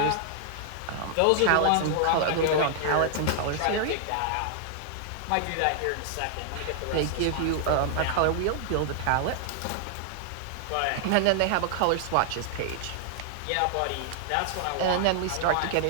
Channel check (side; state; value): both; different; correlation -0.01